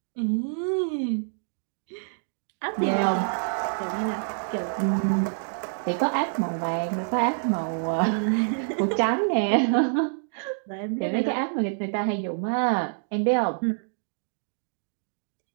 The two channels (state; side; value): silent; left; digital silence